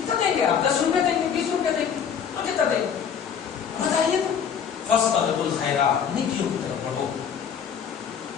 دیں گے آپ؟ 10 روپے دیں گے، 20 روپے دیں گے، اور کتنا دیں گے بتائیے تو؟ فاستبقوا الخیرات، نیکیوں کی طرف بڑھو،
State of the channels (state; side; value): quieter; right; 7.6 dB